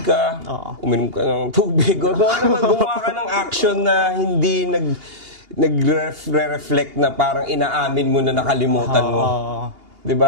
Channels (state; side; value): late; left; 2.8 ms